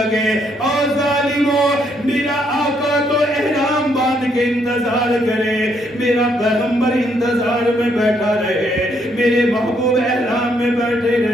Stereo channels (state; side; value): normal; both; correlation 0.72